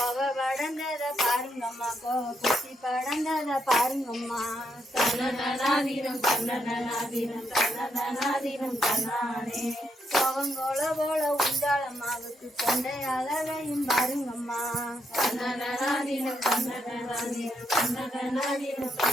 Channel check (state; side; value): normal; both; correlation 0.78